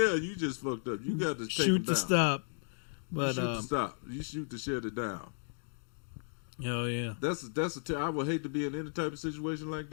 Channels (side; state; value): right; silent; digital silence